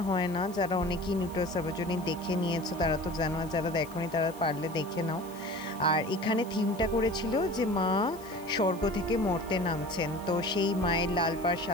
হয় না। যারা অনেকেই নিউ টাউন সর্বজনীন দেখে নিয়েছো তারা তো জানো, আর যারা দেখোনি তারা পারলে দেখে নাও। আর এখানে থিমটা করেছিল যে মা স্বর্গ থেকে মর্তে নামছেন, তো সেই মায়ের লাল পাড়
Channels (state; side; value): noise; left; hiss, 21 dB below the sound